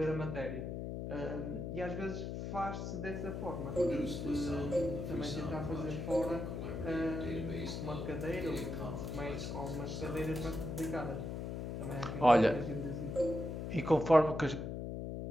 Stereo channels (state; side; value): noise; left; hum, 4 dB below the sound